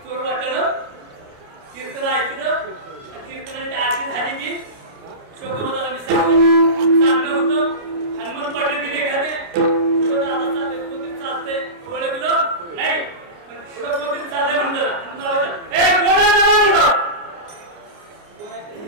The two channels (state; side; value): late; left; 29 ms